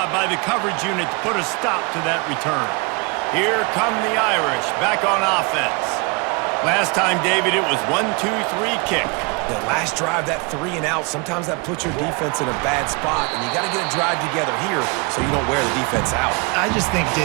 by the coverage unit to put a stop to that return. Here come the Irish back on offense. Last time, David, it was 1-2-3 kick. The last drive, that 3 and out, sometimes that puts your defense in a bad spot, and you got to get a drive together here so you don't wear the defense out. I just think,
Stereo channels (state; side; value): quieter; left; 30.3 dB